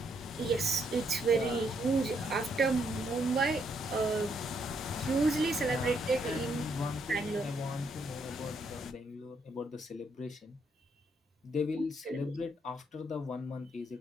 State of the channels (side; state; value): both; normal; correlation 0.74